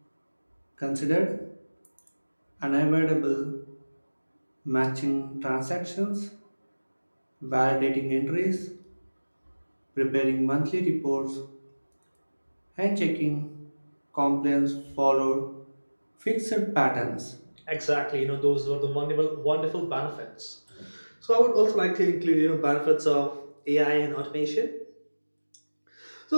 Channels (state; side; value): inverted; both; correlation -1.00